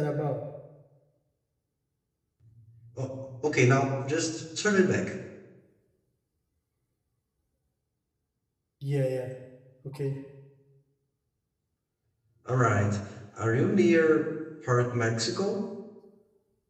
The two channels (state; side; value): identical; both; correlation 1.00